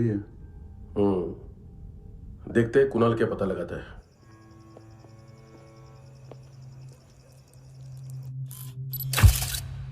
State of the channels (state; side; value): identical; both; correlation 1.00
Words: है? देखते हैं कुणाल क्या पता लगाता है।